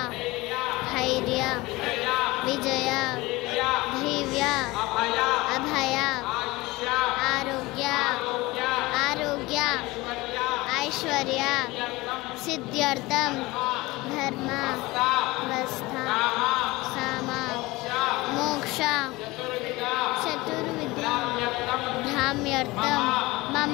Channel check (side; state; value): right; quieter; 21.1 dB